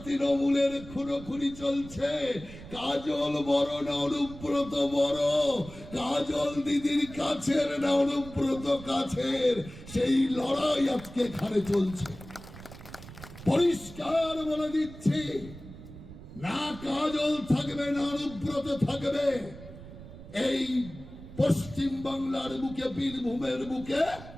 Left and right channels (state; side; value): noise; right; rumble, 15 dB below the sound